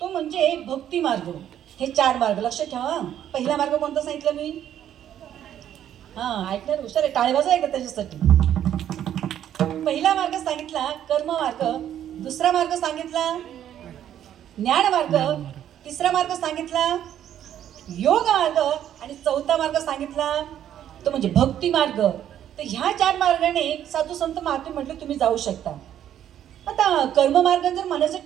तो म्हणजे भक्ती मार्ग. हे 4 मार्ग लक्षात ठेवा. पहिला मार्ग कोणता सांगितलं मी? ऐकणार हुशार आहे, टाळी वाजवा एकदा त्याच्यासाठी. पहिला मार्ग सांगितला कर्म मार्ग, दुसरा मार्ग सांगितला ज्ञान मार्ग, तिसरा मार्ग सांगितला योग मार्ग आणि चौथा मार्ग सांगितला तो म्हणजे भक्ती मार्ग. तर ह्या 4 मार्गाने साधू संत महात्मे म्हटलं तुम्ही जाऊ शकता. आता कर्ममार्ग जर म्हणायचं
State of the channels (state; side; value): quieter; left; 10.6 dB